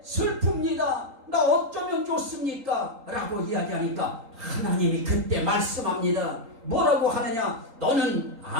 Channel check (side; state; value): left; late; 3.8 ms